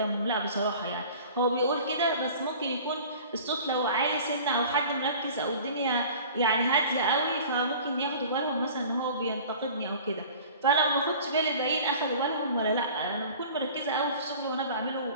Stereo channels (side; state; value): both; inverted; correlation -0.44